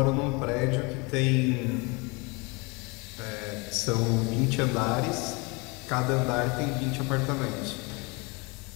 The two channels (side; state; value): right; quieter; 28.5 dB